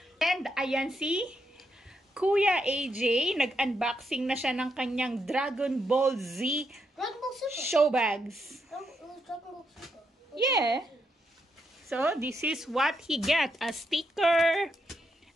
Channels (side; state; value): both; normal; correlation 0.80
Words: And ayan si Kuya AJ, nag-unboxing na siya ng kanyang Dragon Ball Z Dragon Ball Super. show bags. Dragon Ball Super. Yeah. So, this is what he get. A sticker,